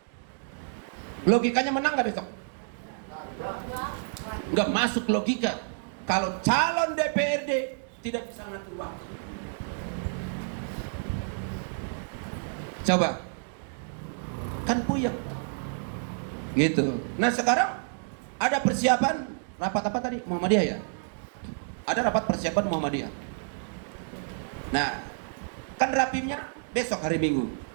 Logikanya menang nggak besok? Nggak masuk logika. Kalau calon DPRD tidak bisa ngatur waktu. Coba, kan puyeng Pak. Gitu. Nah sekarang ada persiapan rapat apa tadi? Muhammadiyah ya? Ada rapat persiapan Muhammadiyah. Nah, kan rapimnya besok hari Minggu.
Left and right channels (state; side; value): silent; left; digital silence